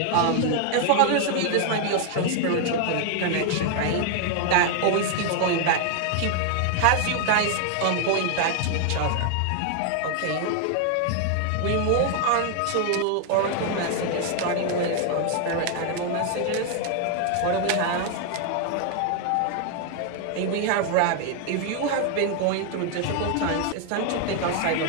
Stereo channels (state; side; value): different; both; correlation 0.00